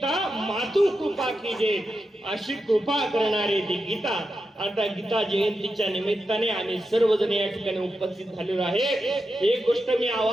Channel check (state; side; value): normal; both; correlation 0.88